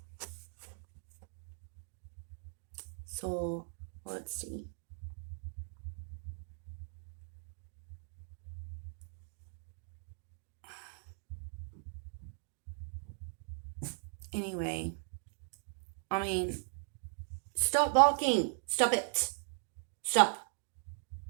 So let's see. Anyway, I mean, stop barking. Stop it. Stop.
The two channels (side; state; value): left; silent; digital silence